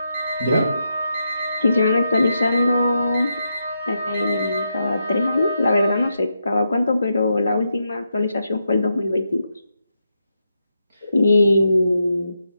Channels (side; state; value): both; inverted; correlation -0.84